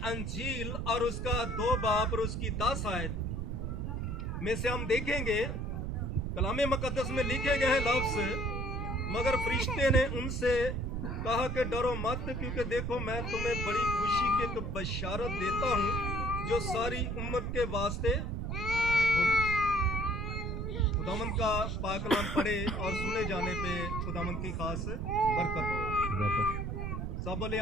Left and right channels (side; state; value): right; noise; rumble, 3 dB below the sound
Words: अंजील और उसका 2 बाब और उसकी 10 आयत में से हम देखेंगे कलाम मुकद्दस में लिखे गए लफ्ज़, मगर फरिश्ते ने उनसे कहा कि डरो मत, क्योंकि देखो मैं तुम्हें बड़ी खुशी की एक बशारत देता हूँ जो सारी उम्मत के वास्ते होगी। खुदावंद का पाक कलाम पढ़े और सुने जाने पे खुदावंद की खास बरकत हो। सब बोले